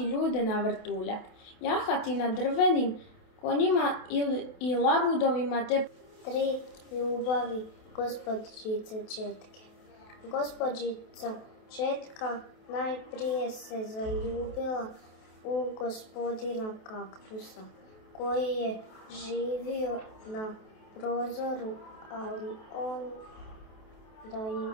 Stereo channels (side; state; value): right; late; 28 ms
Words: ljude na vrtuljak, jahati na drvenim konjima i labudovima te 3 ljubavi gospođice Četke. Gospođica Četka najprije se zaljubila u gospodina Kaktusa, koji je živio na prozoru, ali on da